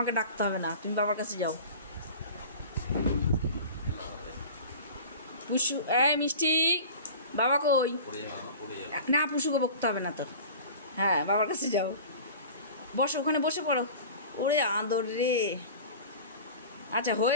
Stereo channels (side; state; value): both; inverted; correlation -0.38